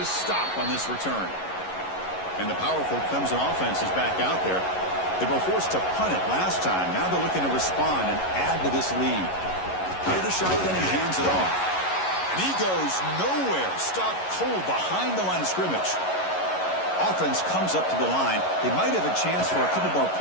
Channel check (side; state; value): right; late; 11 ms